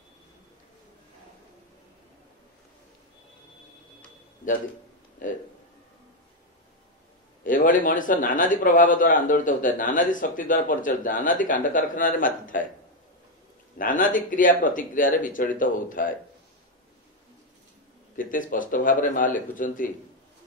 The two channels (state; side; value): normal; both; correlation 0.05